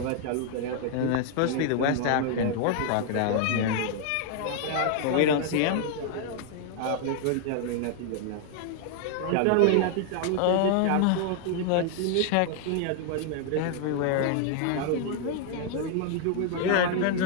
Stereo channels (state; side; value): different; both; correlation 0.00